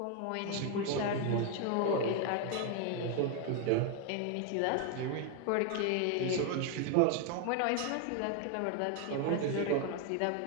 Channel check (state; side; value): different; both; correlation 0.01